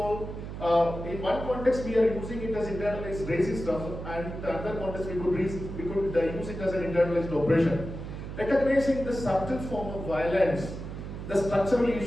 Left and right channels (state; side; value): noise; right; hum, 8 dB below the sound